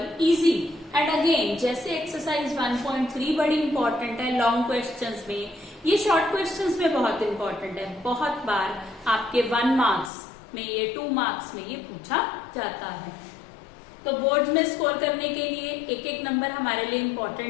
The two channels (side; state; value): right; drops out; at 10.1 s